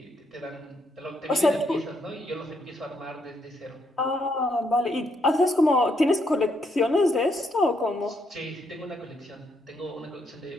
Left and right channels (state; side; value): normal; both; correlation 0.75